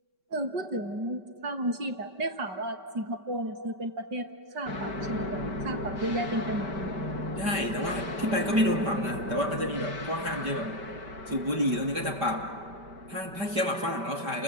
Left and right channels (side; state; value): left; late; 5.2 ms